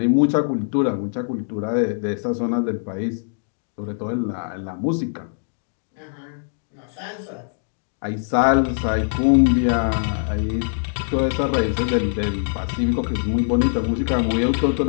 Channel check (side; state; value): right; silent; digital silence